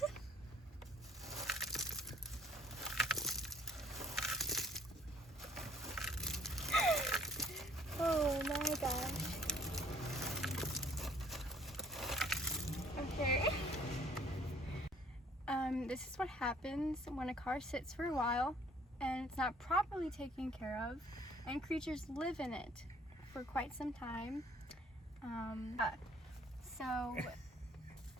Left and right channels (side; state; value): both; normal; correlation 0.59